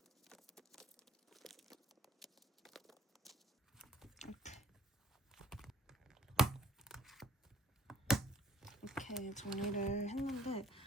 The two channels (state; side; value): normal; both; correlation 0.58